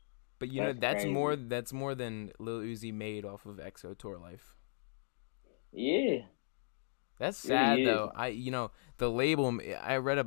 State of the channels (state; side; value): silent; right; digital silence